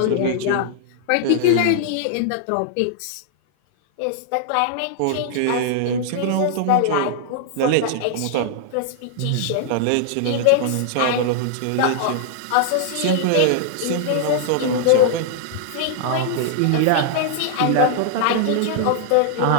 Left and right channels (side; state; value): both; different; correlation -0.01